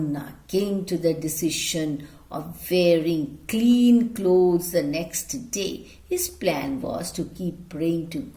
came to the decision of wearing clean clothes the next day. His plan was to keep praying to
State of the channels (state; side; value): identical; both; correlation 1.00